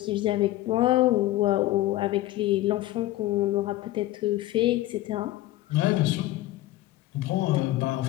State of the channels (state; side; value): quieter; right; 16.3 dB